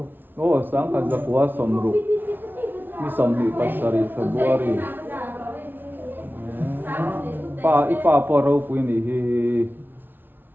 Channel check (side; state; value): left; late; 0.096 ms